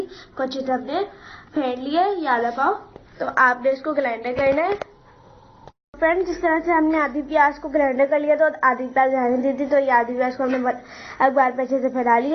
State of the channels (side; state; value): both; identical; correlation 1.00